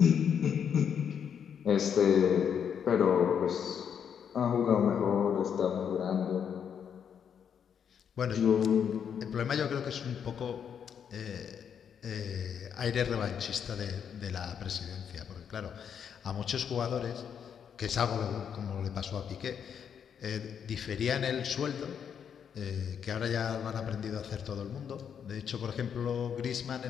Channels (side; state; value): right; quieter; 7.8 dB